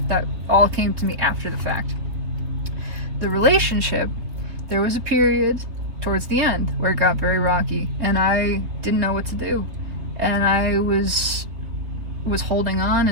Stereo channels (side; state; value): left; late; 3.8 ms